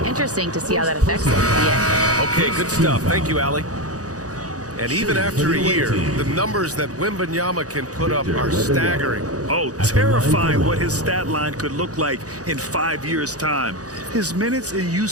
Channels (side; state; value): left; late; 0.67 ms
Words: to see how that affects him at the end. Okay, good stuff. Thank you, Ali. And even after a year, the numbers that Wembanyama can put up are staggering. Oh, terrifying what his stat line could look like in 5 years' time. His minutes and